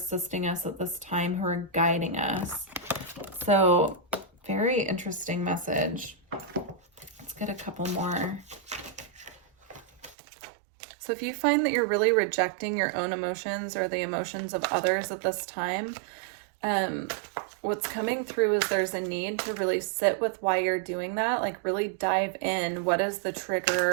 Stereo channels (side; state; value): left; drops out; at 10.2 s